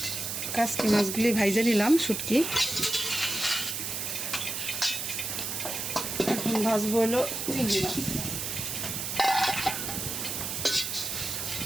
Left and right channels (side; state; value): right; noise; hiss, 3 dB below the sound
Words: কাচকি মাছগুলি ভাইজে নিলাম, শুটকি। এখন ভাজবো হলো চিংড়ি মাছ।